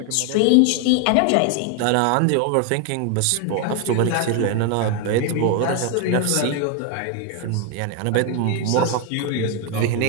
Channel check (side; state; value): both; different; correlation 0.01